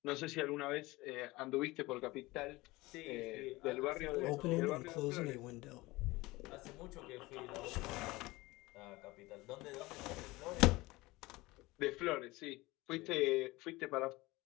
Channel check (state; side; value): quieter; right; 20.8 dB